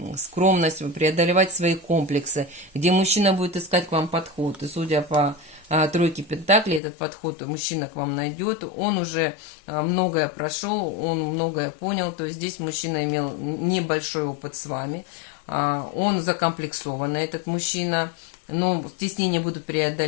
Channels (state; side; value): drops out; right; at 6.8 s